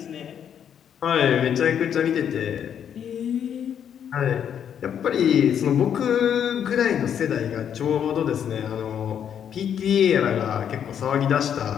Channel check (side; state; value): right; quieter; 8.7 dB